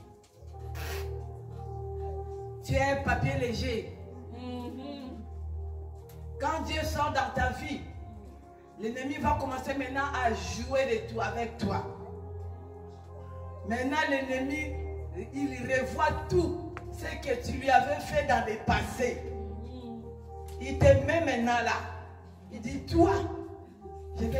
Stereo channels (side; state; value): both; identical; correlation 1.00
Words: tu es un papier léger. Quand Dieu sort dans ta vie, l'ennemi va commencer maintenant à jouer de tout avec toi. Maintenant, l'ennemi, il revoit tout ce que tu lui avais fait dans le passé. Il te met maintenant là. Il dit, toi, je